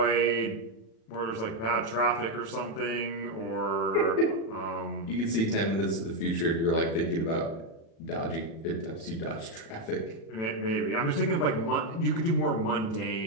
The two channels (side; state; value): right; late; 37 ms